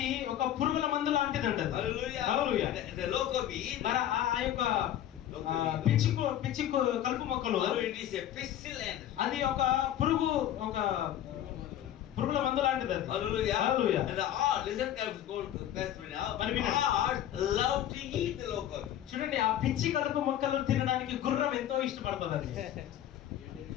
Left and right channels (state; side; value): quieter; right; 11.5 dB